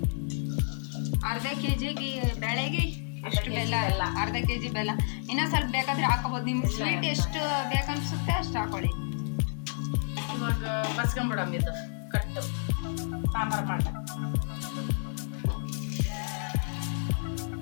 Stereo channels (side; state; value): right; silent; 58 dB below the other